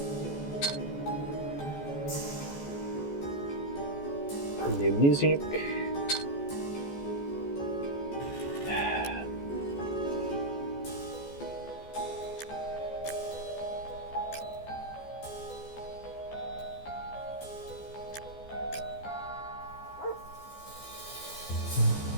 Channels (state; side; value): late; right; 14 ms